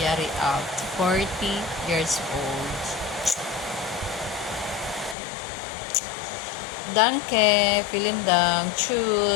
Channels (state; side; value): drops out; right; at 5.2 s